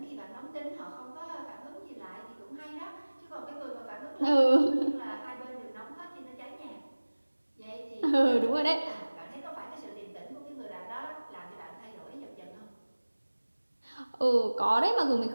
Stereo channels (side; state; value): both; inverted; correlation -1.00